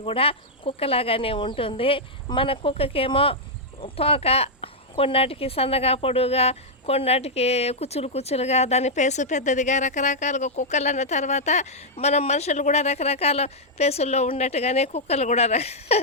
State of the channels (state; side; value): normal; both; correlation -0.05